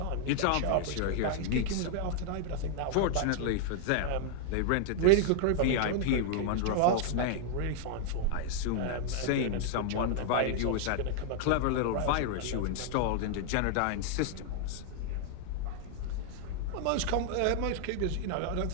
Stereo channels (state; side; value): different; both; correlation -0.01